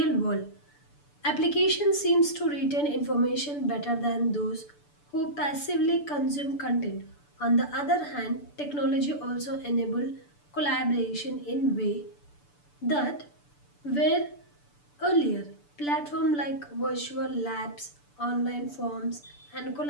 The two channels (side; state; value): right; late; 6.9 ms